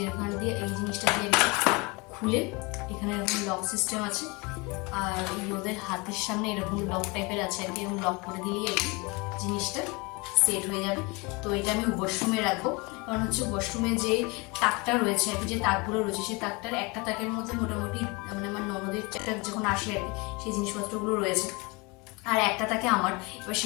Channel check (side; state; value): right; quieter; 27.3 dB